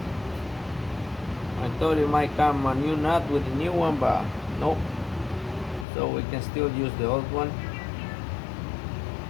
I thought it might come a new nut with the new one, but nope. So we can still use the old one.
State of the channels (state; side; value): drops out; right; at 5.9 s